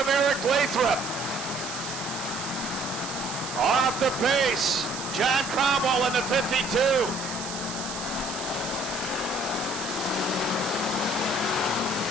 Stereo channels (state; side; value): noise; right; hiss, 8 dB below the sound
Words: Eric Lathrop. Off the pace, John Cromwell in the 52.